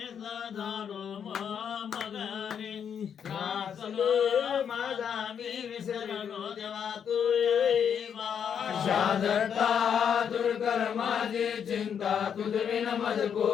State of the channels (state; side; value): quieter; right; 7.9 dB